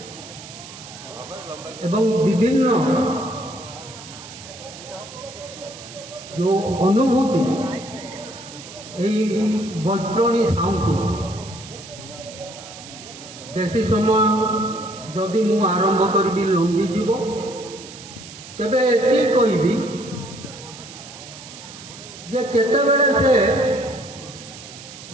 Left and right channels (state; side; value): noise; right; hiss, 15 dB below the sound